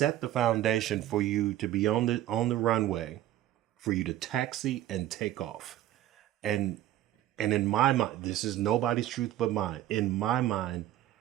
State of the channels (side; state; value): left; quieter; 13.4 dB